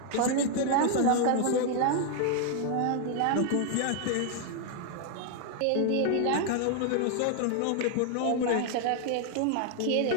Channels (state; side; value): different; both; correlation 0.00